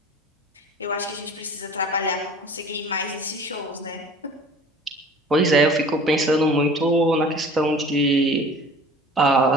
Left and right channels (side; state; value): both; normal; correlation 0.45